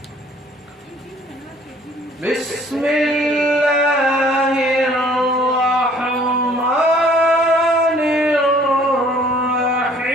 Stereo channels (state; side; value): normal; both; correlation 0.56